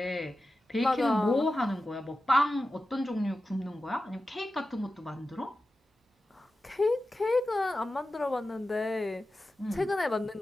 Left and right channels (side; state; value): both; normal; correlation 0.93